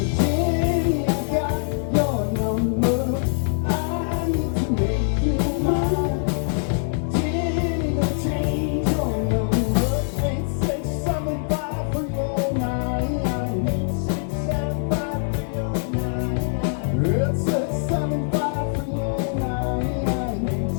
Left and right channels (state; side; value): silent; right; 63 dB below the other